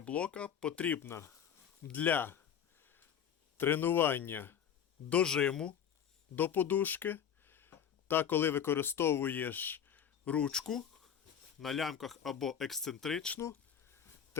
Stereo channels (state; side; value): quieter; right; 8.5 dB